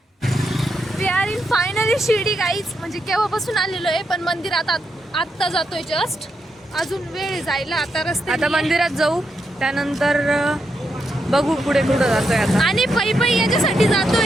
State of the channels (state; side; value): normal; both; correlation 0.83